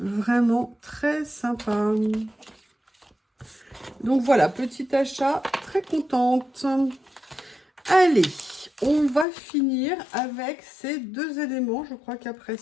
très sympa. Donc voilà, petit achat, très contente. Allez, on va finir avec ces deux éléments. Je crois qu'après,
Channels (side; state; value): right; drops out; at 9.2 s